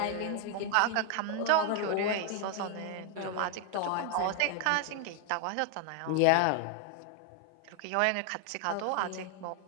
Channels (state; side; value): different; both; correlation 0.00